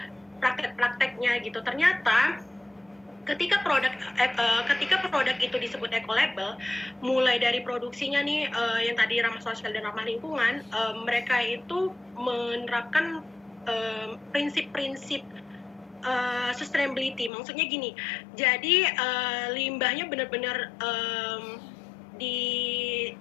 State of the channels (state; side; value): drops out; right; at 17.3 s